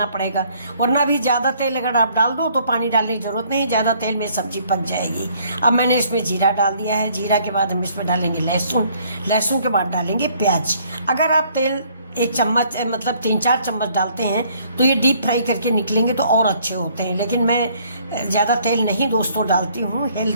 पड़ेगा, वरना भी ज़्यादा तेल अगर आप डाल दो तो पानी डालने की ज़रूरत नहीं, ज़्यादा तेल में सब्जी पक जाएगी। अब मैंने इसमें जीरा डाल दिया है। जीरा के बाद हम इसमें डालेंगे लहसुन, लहसुन के बाद डालेंगे प्याज। अगर आप तेल 1 चम्मच मतलब 3-4 चम्मच डालते हैं तो ये डीप फ्राई करके निकलेंगे तो और अच्छे होते हैं, लेकिन मैं ज़्यादा तेल नहीं दोस्तों डालती हूँ।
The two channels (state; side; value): inverted; both; correlation -0.62